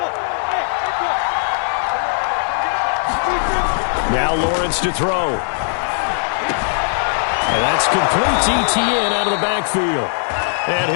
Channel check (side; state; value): right; silent; digital silence